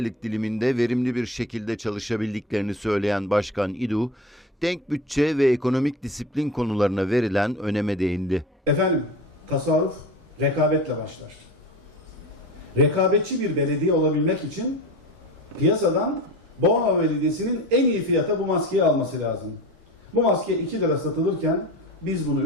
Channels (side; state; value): both; normal; correlation 0.31